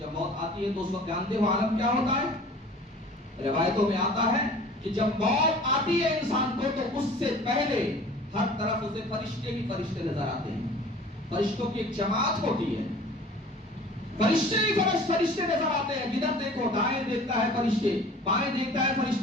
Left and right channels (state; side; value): normal; both; correlation 0.46